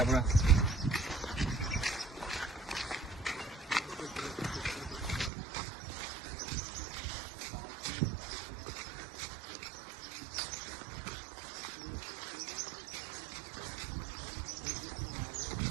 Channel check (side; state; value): left; drops out; at 5.3 s